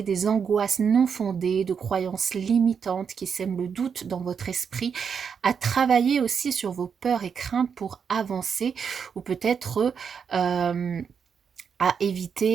des angoisses non fondées, de croyances limitantes qui sèment le doute dans votre esprit, à travailler aussi sur vos peurs et craintes pour avancer ou peut-être à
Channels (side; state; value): left; quieter; 6.7 dB